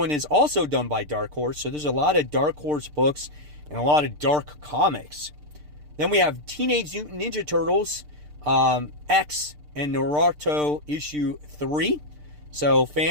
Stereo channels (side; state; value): left; late; 6.7 ms